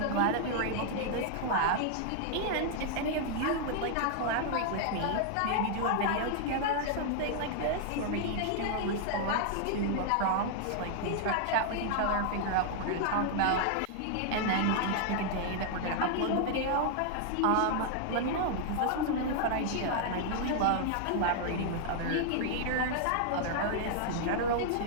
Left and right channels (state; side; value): different; both; correlation 0.00